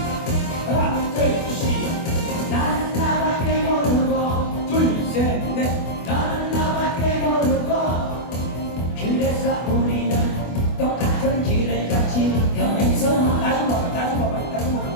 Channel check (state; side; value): late; right; 24 ms